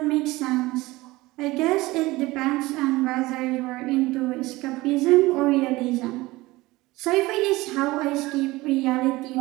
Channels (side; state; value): left; quieter; 20.0 dB